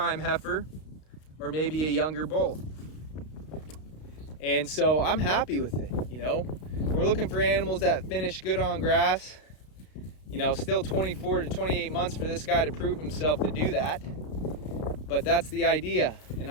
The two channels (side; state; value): right; late; 32 ms